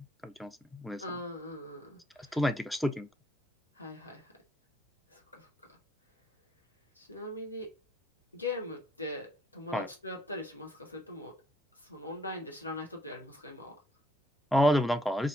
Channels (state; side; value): normal; both; correlation 0.69